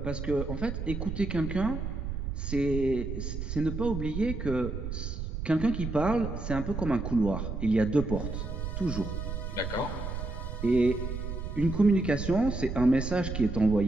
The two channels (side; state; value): right; noise; rumble, 5 dB below the sound